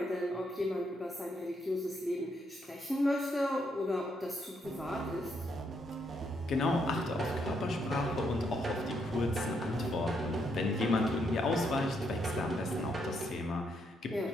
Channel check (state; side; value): normal; both; correlation 0.76